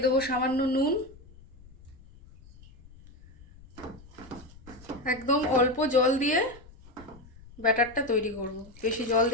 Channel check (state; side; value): noise; left; rumble, 22 dB below the sound